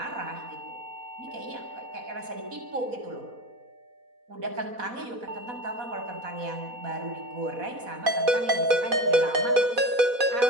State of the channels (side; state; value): left; late; 4.1 ms